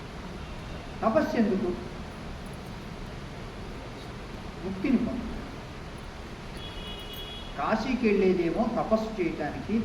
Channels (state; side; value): identical; both; correlation 1.00